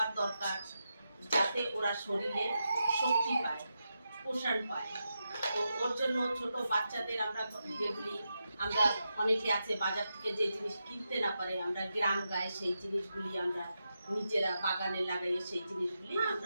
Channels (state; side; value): inverted; both; correlation -0.87